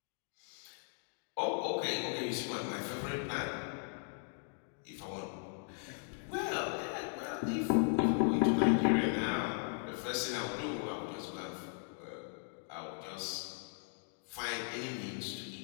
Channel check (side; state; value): right; silent; 53 dB below the other